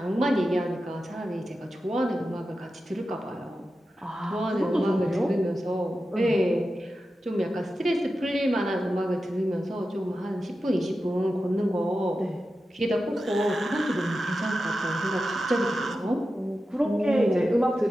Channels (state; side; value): normal; both; correlation 0.92